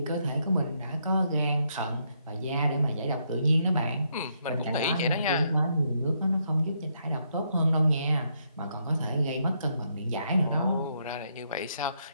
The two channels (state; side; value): inverted; both; correlation -0.76